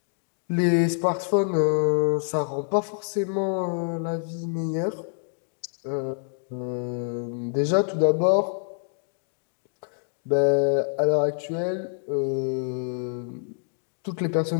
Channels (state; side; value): silent; right; 60 dB below the other